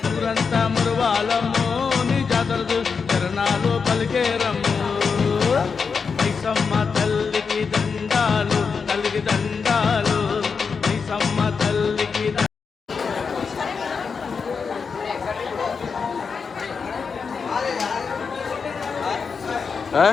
ఊరంతా మురువాలము నీ జాతర చరణాలు పలికేరము. నిసమ్మ తల్లికి దండాలు, తల్లికి దండాలు, నిసమ్మ తల్లికి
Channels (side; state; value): right; quieter; 5.5 dB